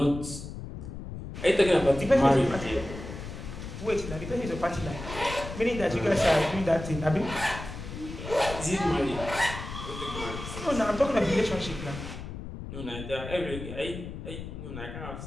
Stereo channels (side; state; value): left; noise; rumble, 9 dB below the sound